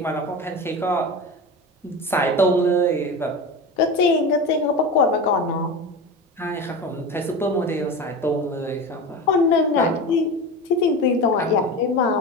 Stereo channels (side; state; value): both; normal; correlation 0.28